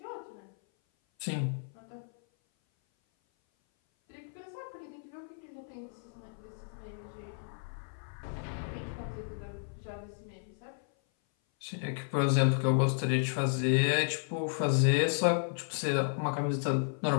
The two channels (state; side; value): silent; right; 56 dB below the other